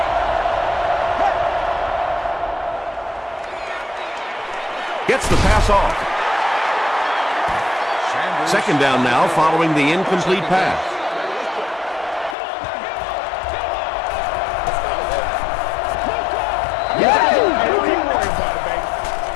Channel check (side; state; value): right; drops out; at 12.4 s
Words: Gets the pass off. Second down now following the incomplete pass.